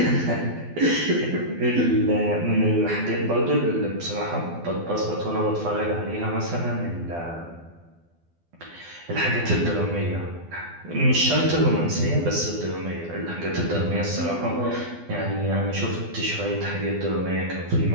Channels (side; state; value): left; late; 12 ms